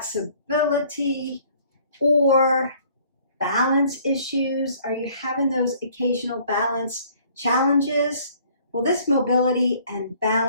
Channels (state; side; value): inverted; both; correlation -0.58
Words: or balance issues? Are you having those occasional balance challenges? Well, this mobility and